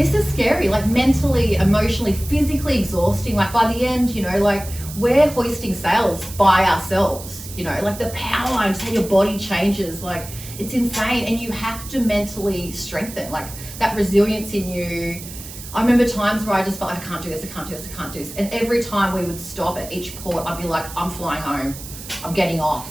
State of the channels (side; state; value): right; noise; hiss, 13 dB below the sound